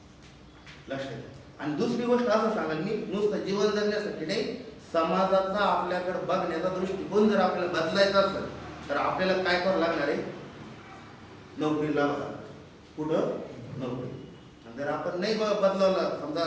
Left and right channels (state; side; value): identical; both; correlation 1.00